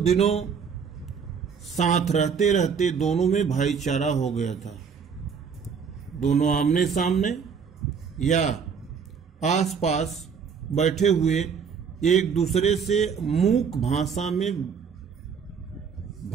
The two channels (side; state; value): left; quieter; 6.4 dB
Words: साथ रहते रहते दोनों में भाईचारा हो गया था। दोनों आमने सामने या आसपास बैठे हुए एक दूसरे से मूक भाषा में